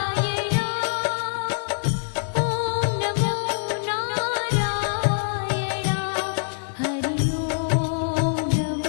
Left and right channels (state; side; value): silent; right; 62 dB below the other